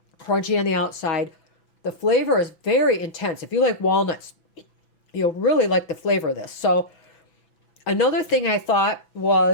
crunchy on the outside. The flavor is very intense. If you like walnuts, you'll really like the flavor of this. So another thing I thought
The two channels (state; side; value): late; right; 6.0 ms